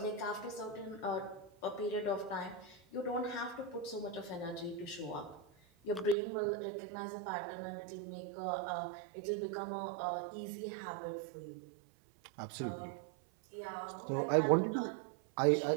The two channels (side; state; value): left; drops out; at 6.2 s